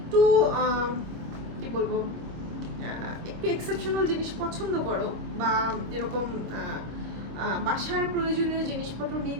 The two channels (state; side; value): late; left; 26 ms